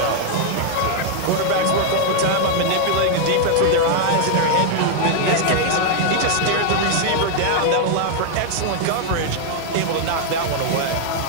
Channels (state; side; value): different; both; correlation 0.00